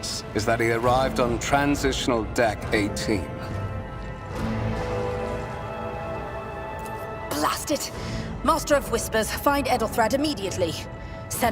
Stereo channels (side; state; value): both; identical; correlation 1.00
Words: is that he arrived on Transitional Deck 18. Blast it! Master of Whispers, find Edelthrad immediately.